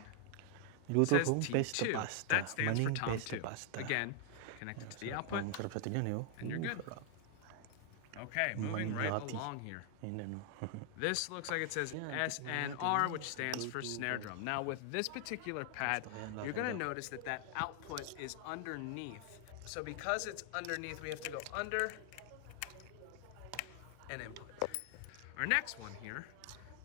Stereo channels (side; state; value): both; different; correlation 0.00